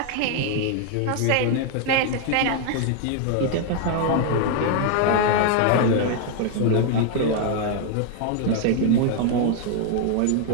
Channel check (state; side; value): different; both; correlation 0.00